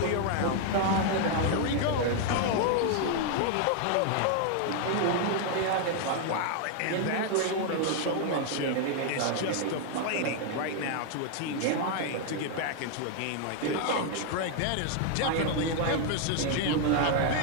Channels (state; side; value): different; both; correlation 0.00